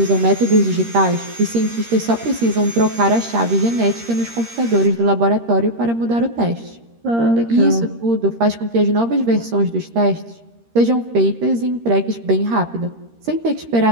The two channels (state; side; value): late; left; 13 ms